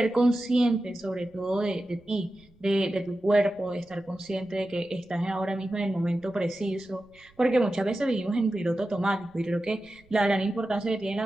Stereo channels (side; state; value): right; noise; rumble, 30 dB below the sound